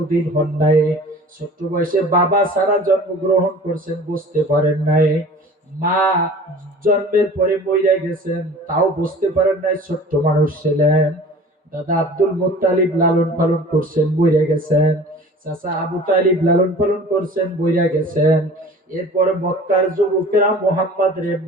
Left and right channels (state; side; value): normal; both; correlation 0.43